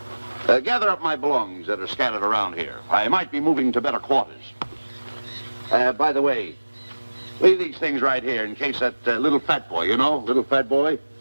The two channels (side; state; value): both; inverted; correlation -1.00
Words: Gather up my belongings that are scattered around here. I might be moving to better quarters. By the way, leave these things right here in case that little fat boy, you know, little fat boy,